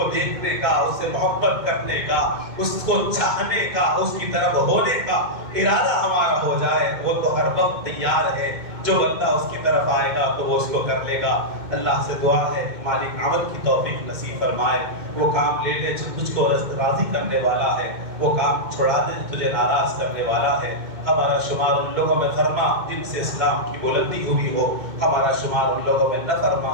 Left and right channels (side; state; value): left; late; 2.1 ms